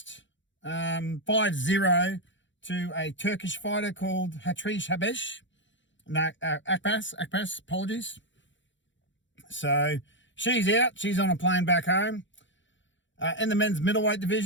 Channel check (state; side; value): late; right; 0.54 ms